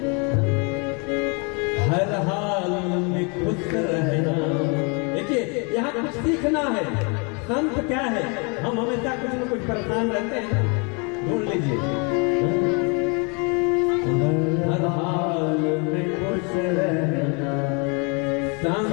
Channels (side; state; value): right; quieter; 33.4 dB